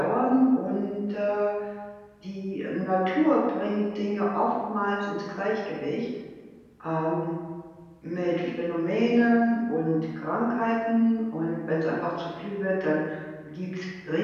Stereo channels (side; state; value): both; identical; correlation 1.00